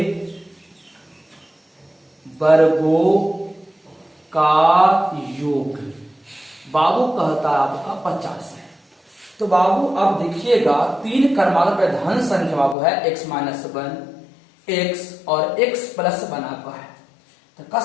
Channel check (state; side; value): drops out; right; at 12.8 s